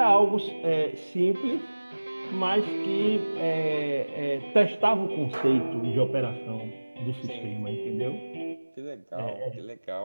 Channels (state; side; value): inverted; both; correlation -1.00